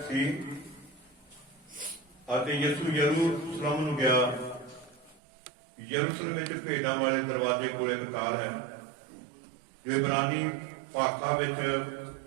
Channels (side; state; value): left; drops out; at 5.2 s